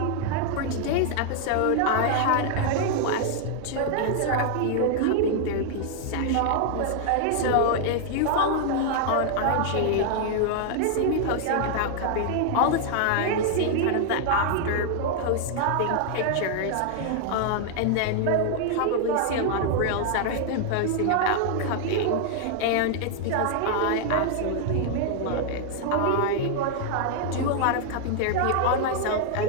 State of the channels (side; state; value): both; different; correlation 0.00